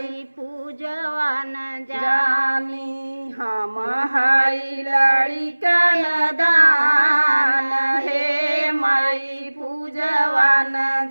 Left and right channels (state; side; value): inverted; both; correlation -1.00